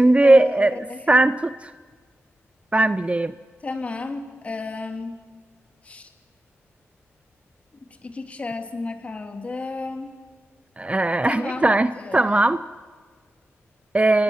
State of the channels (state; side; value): normal; both; correlation 0.93